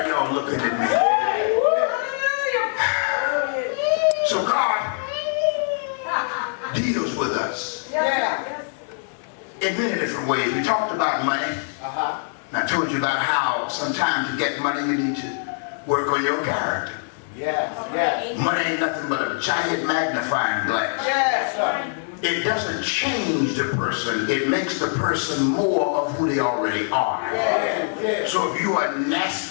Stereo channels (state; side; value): silent; right; 56 dB below the other